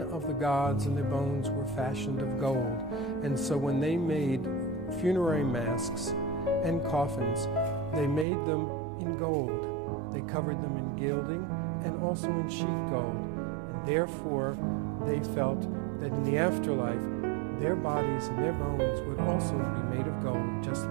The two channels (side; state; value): left; drops out; at 8.2 s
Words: the gods and their bones were fashioned of gold, and so when they made funerary masks and coffins, they made them in gold. They covered them in gilding and also in sheet gold, and therefore they felt that in the afterlife, their bodies and their bones would also be made of gold, just